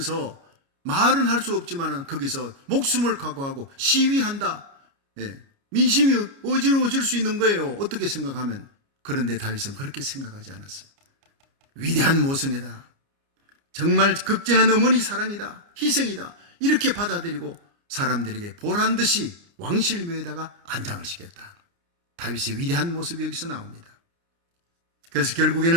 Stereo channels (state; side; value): late; left; 29 ms